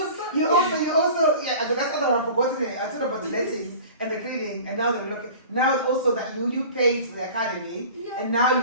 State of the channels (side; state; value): both; inverted; correlation -0.40